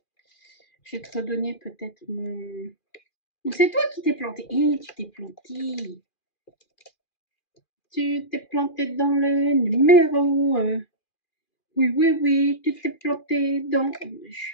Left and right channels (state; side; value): late; right; 2.4 ms